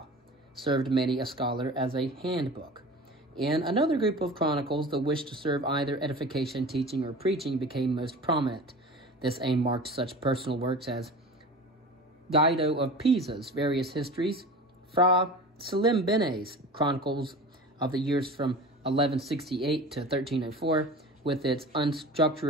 served many a scholar as a handbook. In another group of chronicles, the wish to serve either edification, teaching, or preaching became most prominent. This aim marked such personal works as Guido of Pisa's various histories, Fra Salimbene's Chronicles of the years from 1168 to 1304, with its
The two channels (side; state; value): both; normal; correlation 0.36